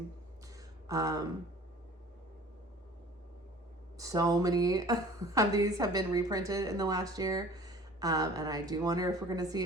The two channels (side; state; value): both; normal; correlation 0.47